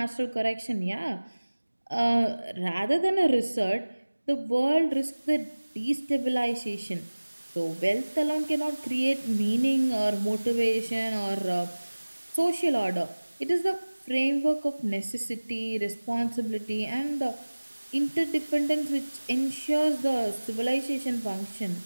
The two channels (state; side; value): inverted; both; correlation -1.00